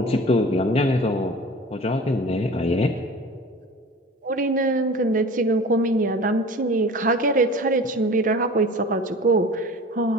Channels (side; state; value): both; normal; correlation 0.40